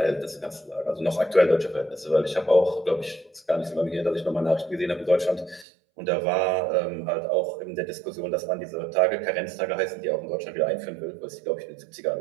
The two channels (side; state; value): left; drops out; at 5.7 s